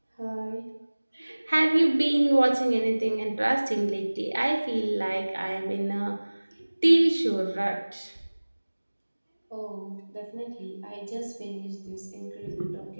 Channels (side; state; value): both; inverted; correlation -1.00